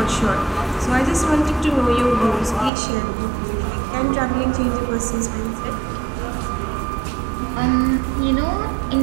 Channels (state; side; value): drops out; left; at 2.7 s